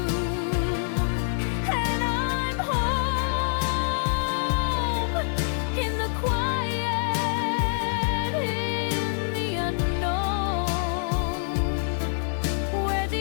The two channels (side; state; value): right; silent; digital silence